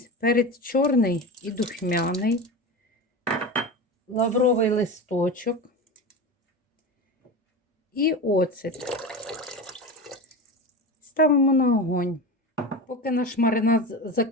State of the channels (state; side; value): normal; both; correlation 0.26